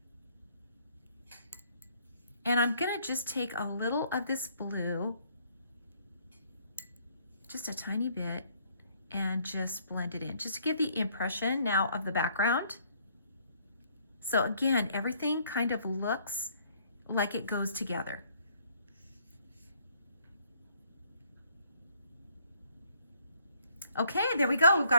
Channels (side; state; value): both; inverted; correlation -0.64